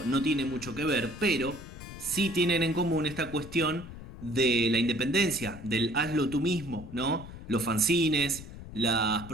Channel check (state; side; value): noise; left; rumble, 13 dB below the sound